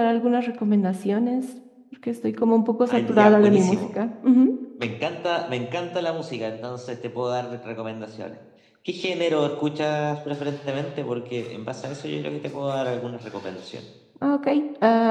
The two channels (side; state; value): both; identical; correlation 1.00